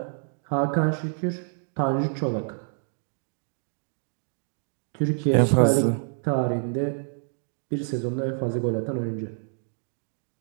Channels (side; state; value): left; silent; 60 dB below the other